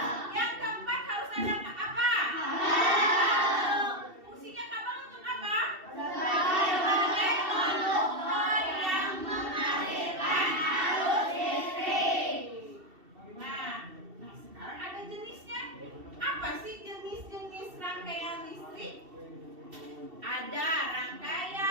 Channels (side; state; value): left; late; 2.7 ms